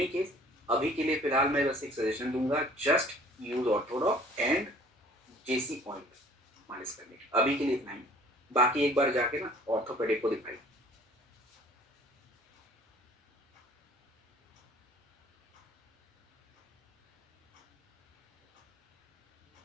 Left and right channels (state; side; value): normal; both; correlation 0.52